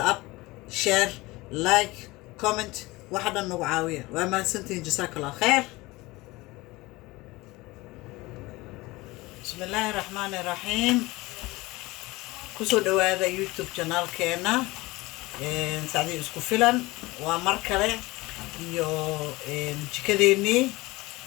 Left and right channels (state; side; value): quieter; right; 21.3 dB